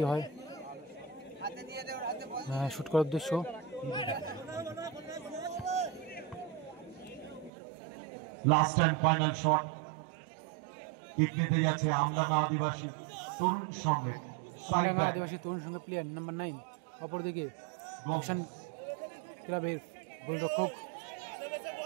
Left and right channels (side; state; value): left; drops out; at 7.5 s